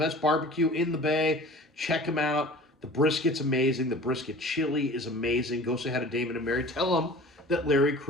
barbecue in the Bay. Check them out. The brisket's amazing. The brisket chili is amazing. Go say hi to Damon and Mary. Tell them that Larry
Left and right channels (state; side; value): normal; both; correlation 0.42